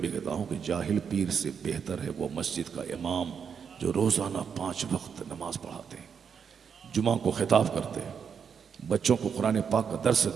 कहता हूँ कि जाहिल पीर से बेहतर है वो मस्जिद का इमाम जो रोज़ाना 5 वक्त नमाज पढ़ाते हैं, जुमा को खिताब करते हैं, बच्चों को कुरान पाक का दर्स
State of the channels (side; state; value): left; quieter; 6.9 dB